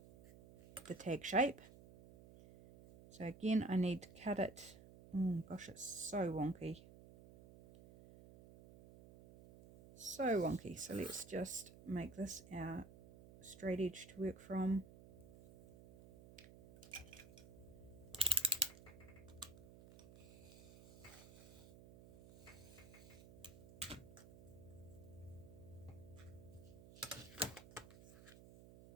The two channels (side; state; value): right; noise; hum, 18 dB below the sound